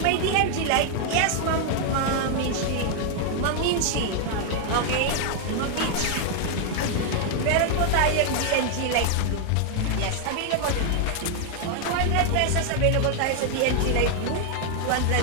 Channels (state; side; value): different; both; correlation 0.00